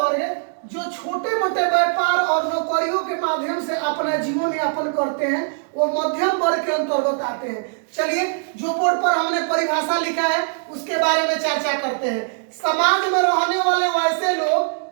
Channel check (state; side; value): silent; left; digital silence